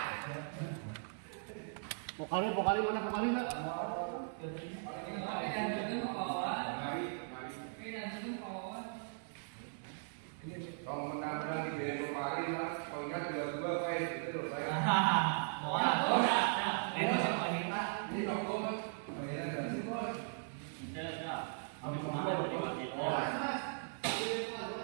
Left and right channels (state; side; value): silent; left; digital silence